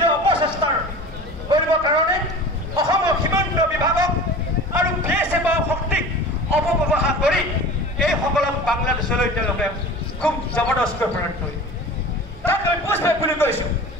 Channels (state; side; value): normal; both; correlation 0.37